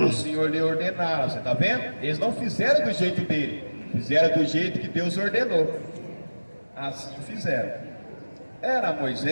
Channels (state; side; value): inverted; both; correlation -1.00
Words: o Senhor lhe ordenara. Você está vendo? Eles não fizeram do jeito dele, fizeram do jeito que Deus ordenou. Assim fizeram. Era